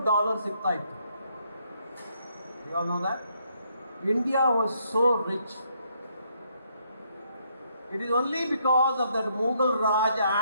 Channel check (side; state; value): both; inverted; correlation -0.72